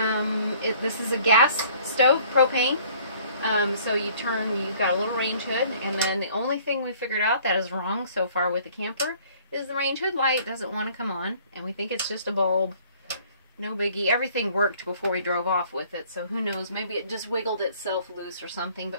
this is a gas stove, propane. So you've got a little range hood, and then the only thing we figured out that is wrong so far with the camper is the range hood light doesn't want to come on, and we think it's just a bulb. No biggie. Everything worked before we drove off with it, so who knows, maybe it just wiggled itself loose or something,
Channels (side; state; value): both; inverted; correlation -0.56